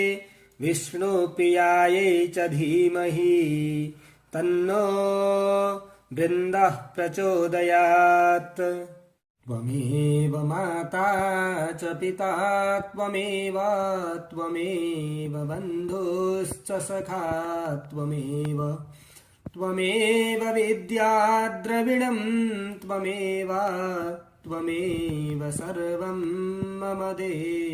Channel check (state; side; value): identical; both; correlation 1.00